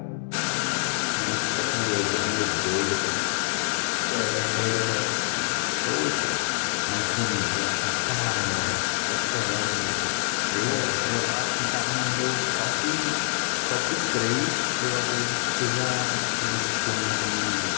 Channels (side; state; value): right; silent; digital silence